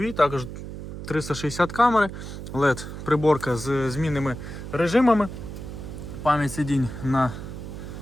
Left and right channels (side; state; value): right; noise; hum, 9 dB below the sound